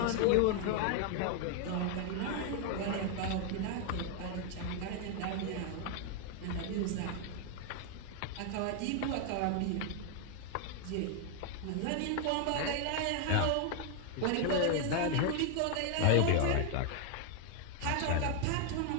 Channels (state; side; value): different; both; correlation 0.00